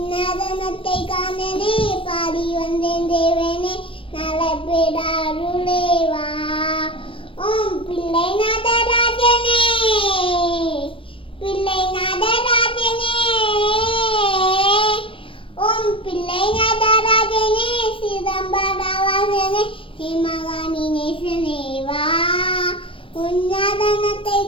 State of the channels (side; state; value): right; late; 0.25 ms